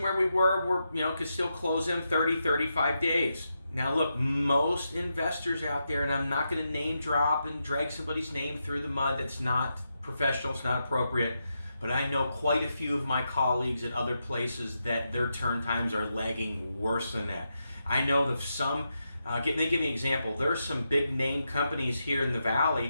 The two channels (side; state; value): both; inverted; correlation -0.85